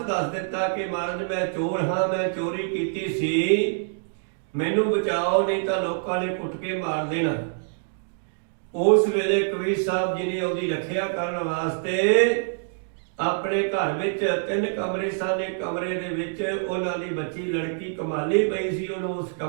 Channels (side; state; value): left; silent; digital silence